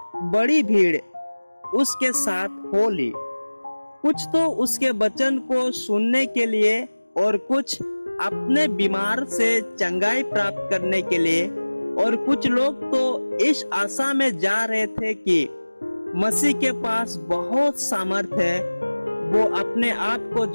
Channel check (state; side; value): inverted; both; correlation -1.00